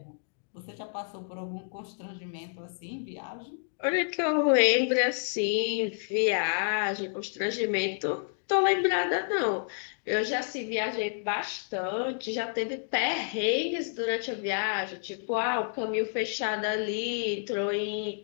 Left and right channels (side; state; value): right; silent; digital silence